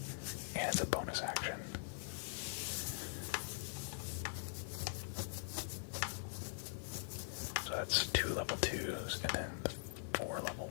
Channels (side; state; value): right; silent; digital silence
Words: And it's a bonus action. So that's 2 level 2s and then 4 level